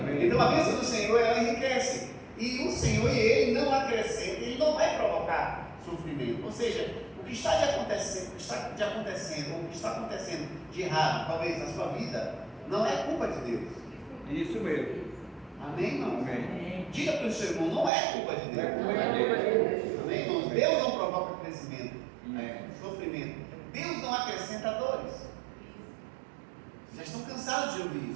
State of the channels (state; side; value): drops out; left; at 17.9 s